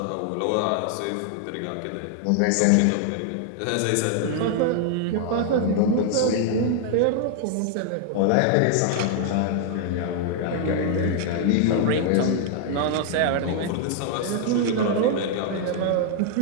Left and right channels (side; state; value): both; different; correlation 0.00